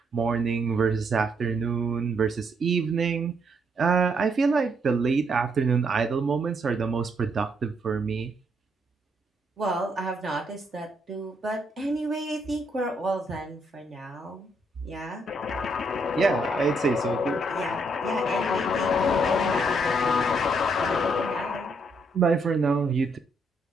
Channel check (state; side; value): normal; both; correlation 0.74